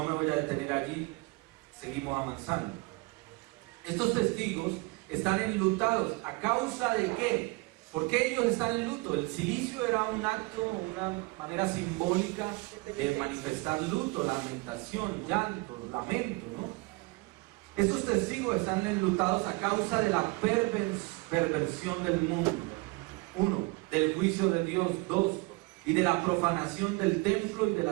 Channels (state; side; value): quieter; left; 25.2 dB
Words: me voy a detener allí. Seguimos avanzando. Estos testigos están enlutados. ¿A causa de qué? ¿Por qué ellos están en luto? El cilicio era un acto, una manera simbólica de manifestar luto, lamentación, llanto, lamento, ¿no? Estos testigos están enlutados a causa de la perversión del mundo. 1, del juicio de Dios. 2, y de la profanación del templo y de